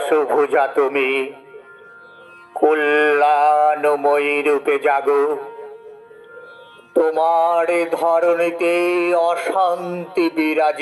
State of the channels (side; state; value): both; identical; correlation 1.00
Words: তুমি, কল্যাণময়ী রূপে জাগো। তোমার ধরণীতে অশান্তি